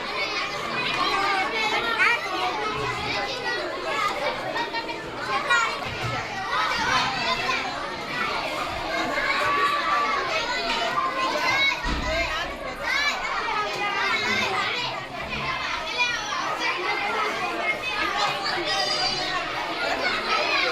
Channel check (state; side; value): identical; both; correlation 1.00